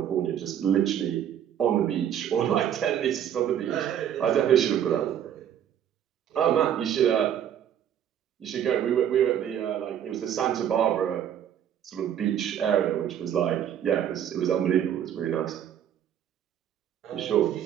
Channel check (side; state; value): left; quieter; 9.8 dB